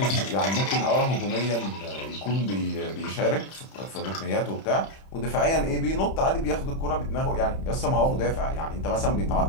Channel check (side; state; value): right; late; 31 ms